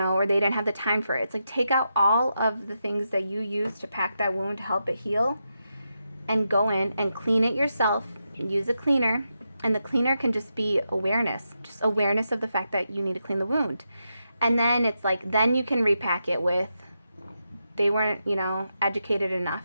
or they didn't have the time for it. It's like, take out all of the things that you use to pack that wound to help it heal, and go in and clean it yourself. Use a cleaner, and the cleaner can just be awareness, just awareness of the fact that you need to clean the wound. And then it's like, then you can repack it with, they weren't, you know, educated enough.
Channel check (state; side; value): inverted; both; correlation -0.86